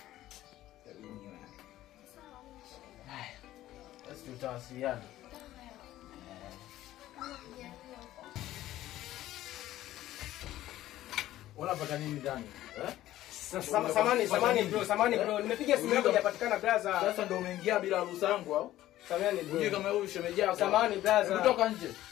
Hebu niwe. Haya. Basi tutawasiliana. Unapata nini ndani? Samani bro, nimepiga simu yako hajapatikana brother. Sasa ndio umeingia bila ruhusa yangu au? Samani bro. Unje kama huyu shemeji yako. Samani brother. Toka nje.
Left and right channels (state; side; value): quieter; right; 14.3 dB